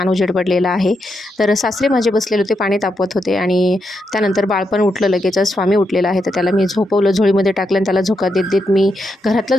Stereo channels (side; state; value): both; normal; correlation 0.83